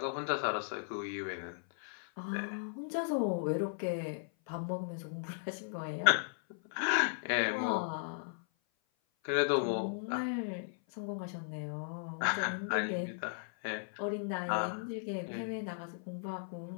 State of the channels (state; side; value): silent; right; 53 dB below the other